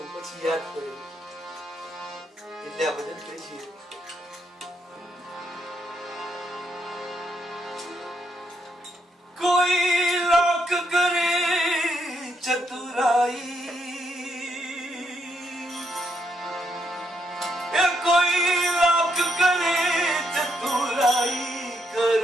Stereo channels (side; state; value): both; normal; correlation 0.77